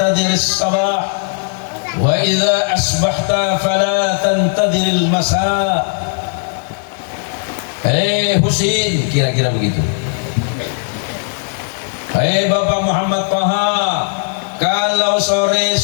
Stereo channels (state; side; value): silent; right; 69 dB below the other